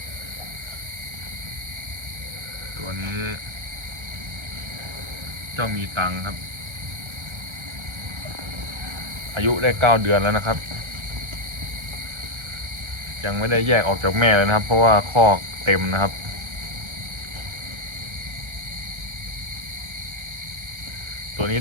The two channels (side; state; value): left; late; 1.3 ms